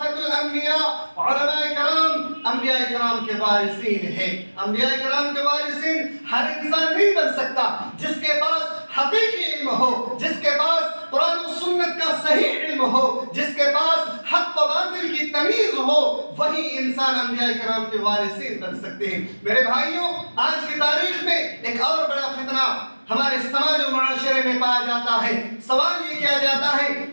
الانبیاء، علماء کرام انبیاء کرام کے وارثین ہیں۔ انبیاء کرام کے وارثین ہر انسان نہیں بن سکتا۔ جس کے پاس حقیقی علم ہو، جس کے پاس قرآن و سنت کا صحیح علم ہو، جس کے پاس حق و باطل کی تمیز ہو، وہی انسان انبیاء کرام کے وارثین بن سکتے ہیں۔ میرے بھائیوں، آج کی تاریخ میں ایک اور بڑا فتنہ ہمارے سماج و معاشرے میں پایا جاتا ہے۔ سوال یہ کیا جاتا ہے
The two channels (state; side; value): inverted; both; correlation -1.00